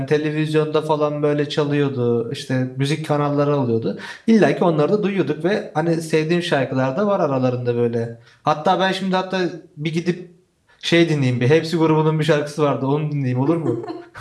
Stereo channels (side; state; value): both; identical; correlation 1.00